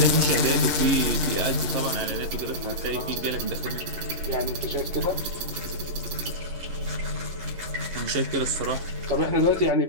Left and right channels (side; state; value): left; late; 10 ms